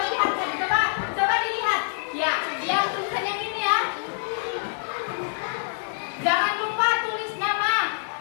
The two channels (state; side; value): silent; right; digital silence